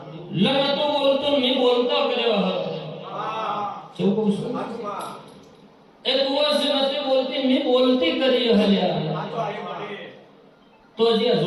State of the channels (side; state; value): both; identical; correlation 1.00